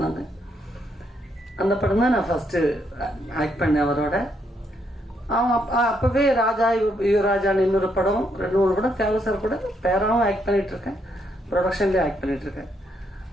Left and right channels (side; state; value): both; normal; correlation 0.75